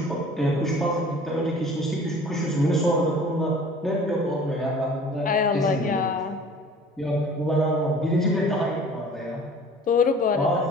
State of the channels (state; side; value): normal; both; correlation 0.47